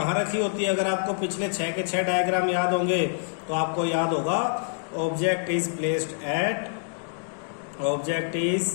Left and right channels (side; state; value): right; silent; digital silence